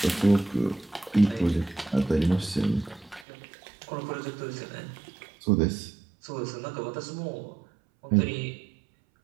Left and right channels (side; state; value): left; drops out; at 3.2 s